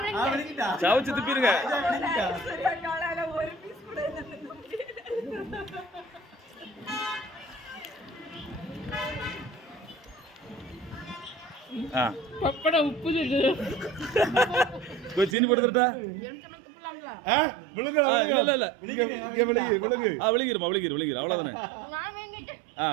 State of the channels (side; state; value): left; drops out; at 15.4 s